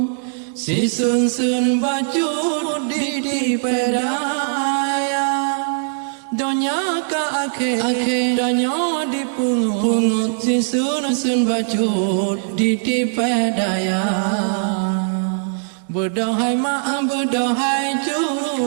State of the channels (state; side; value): silent; left; digital silence